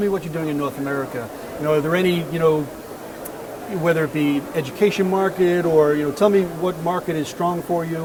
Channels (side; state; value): both; identical; correlation 1.00